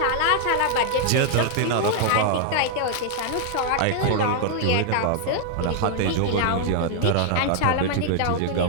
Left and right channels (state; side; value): different; both; correlation 0.00